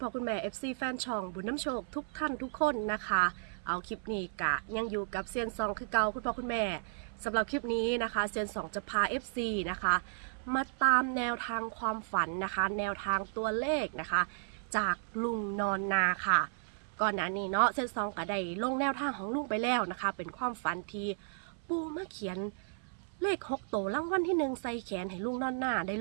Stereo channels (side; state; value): left; silent; 55 dB below the other